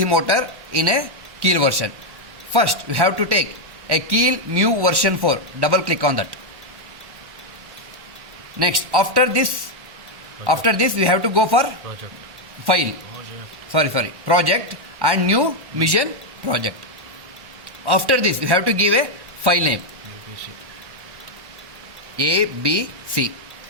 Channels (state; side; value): late; left; 1.1 ms